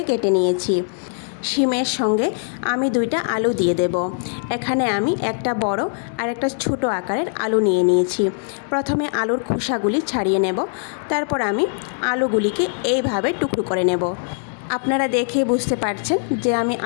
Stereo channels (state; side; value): silent; right; 62 dB below the other